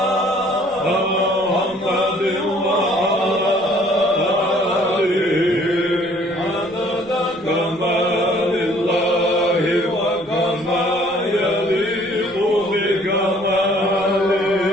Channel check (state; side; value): noise; right; rumble, 26 dB below the sound